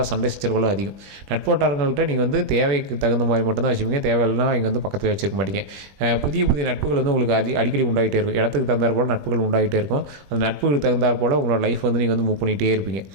சண்டை சச்சரவுகளும் அதிகம். நட்போட்டாரங்கள்கிட்ட நீங்கள் வந்து தேவைக்கு தகுந்த மாதிரி மட்டும்தான் வச்சுப்பீங்க, தேவையில்லாம் இங்கே வந்து பக்கத்தில் வச்சுருக்க மாட்டீங்க. புதிய புதிய நட்புகள் வந்து உங்களுக்கு அடிக்கடி உண்டாகிட்டே இருக்கும். இடத்துக்கு தகுந்தாற் போல் நட்புகள் உண்டாகிட்டே இருக்கும். அந்த நட்புகளுக்கு தகுந்தாற் போல் உங்களோட லைஃப் வந்து நீங்கள் வந்து மூவ் பண்ணிகிட்டே இருப்பீங்க.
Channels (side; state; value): left; late; 20 ms